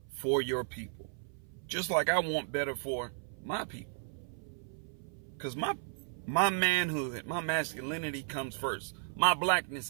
for your people, just like I want better for my people. Because my manhood, my masculinity comes first. My blackness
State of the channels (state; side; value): silent; left; 55 dB below the other